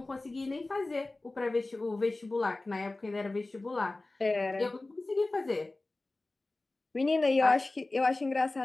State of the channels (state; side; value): quieter; right; 3.0 dB